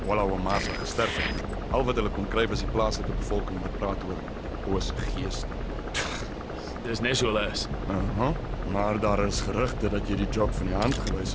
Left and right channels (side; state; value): both; identical; correlation 1.00